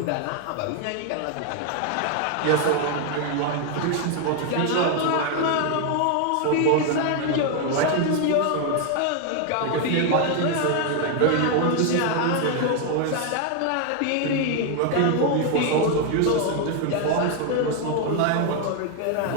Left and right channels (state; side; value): different; both; correlation 0.01